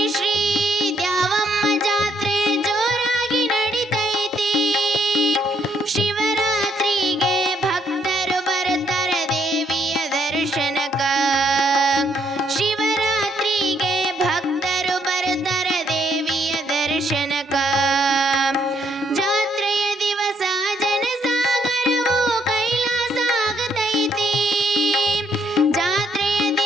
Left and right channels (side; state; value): both; normal; correlation 0.71